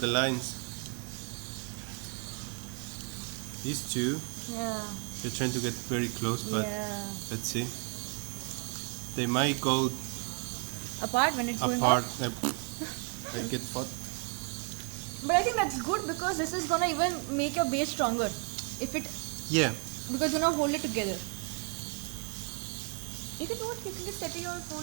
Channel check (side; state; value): left; quieter; 36.6 dB